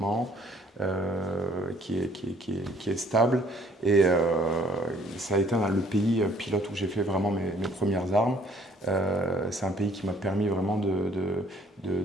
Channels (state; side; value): normal; both; correlation 0.60